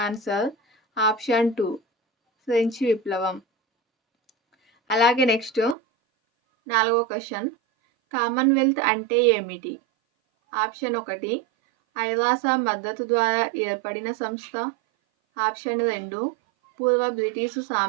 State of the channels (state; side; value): drops out; left; at 5.8 s